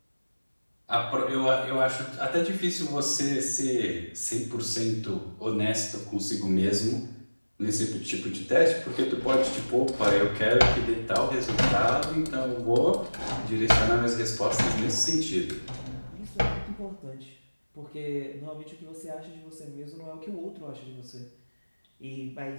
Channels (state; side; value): inverted; both; correlation -1.00